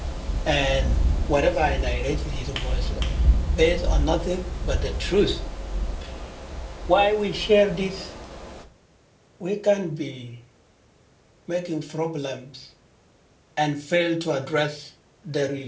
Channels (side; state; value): both; identical; correlation 1.00